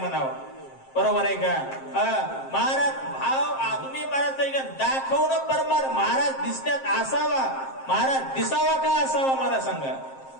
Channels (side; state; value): right; late; 7.5 ms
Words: बरोबर आहे का. महाराज भाव तुम्ही महाराज दाखवणं परमार महाराज दिसण्यात असावा, महाराज दिसावा का असावा मला सांगा.